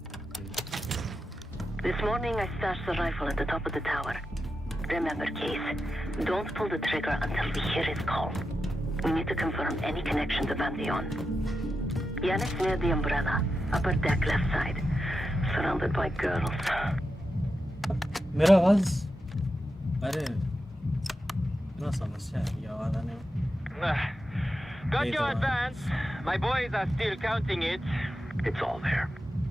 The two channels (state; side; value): normal; both; correlation 0.89